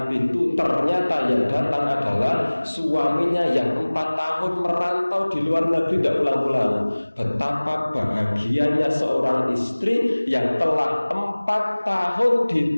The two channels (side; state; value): both; inverted; correlation -1.00